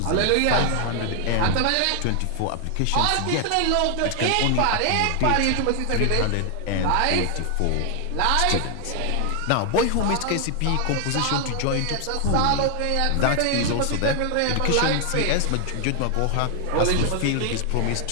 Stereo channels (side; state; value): both; different; correlation 0.00